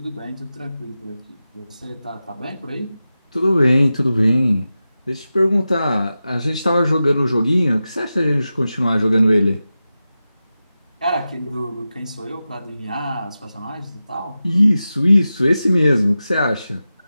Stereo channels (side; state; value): both; inverted; correlation -0.93